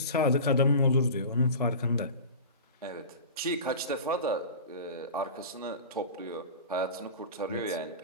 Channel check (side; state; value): both; inverted; correlation -0.33